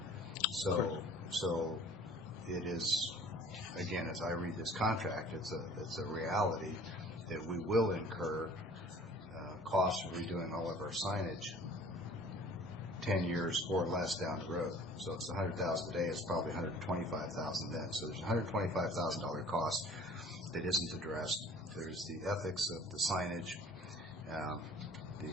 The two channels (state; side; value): normal; both; correlation 0.50